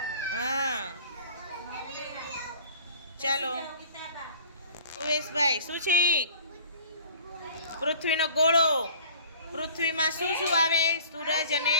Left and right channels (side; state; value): both; inverted; correlation -0.46